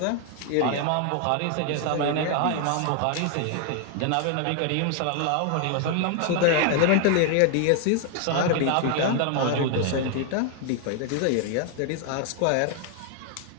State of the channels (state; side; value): different; both; correlation 0.00